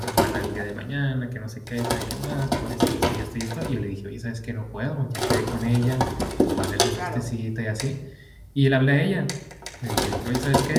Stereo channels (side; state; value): both; identical; correlation 1.00